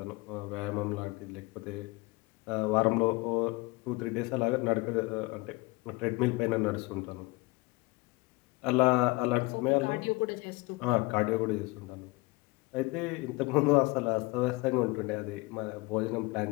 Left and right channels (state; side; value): quieter; right; 23.6 dB